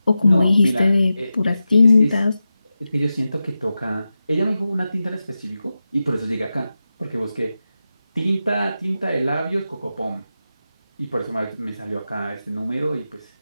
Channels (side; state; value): both; inverted; correlation -0.92